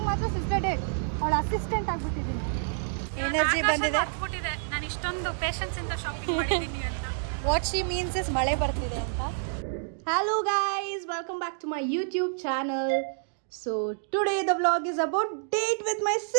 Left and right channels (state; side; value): silent; left; digital silence